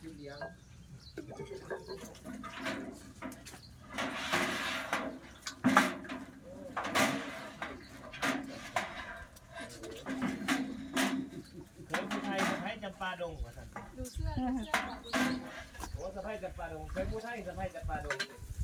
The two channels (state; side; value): identical; both; correlation 1.00